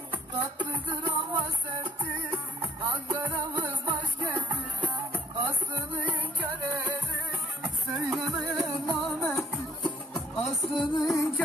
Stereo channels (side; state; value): both; normal; correlation 0.65